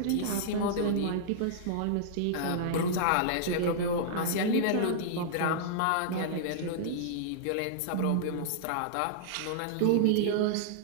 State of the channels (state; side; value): different; both; correlation -0.02